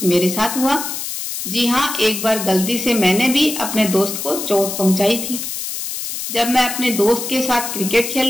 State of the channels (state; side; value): noise; left; hiss, 5 dB below the sound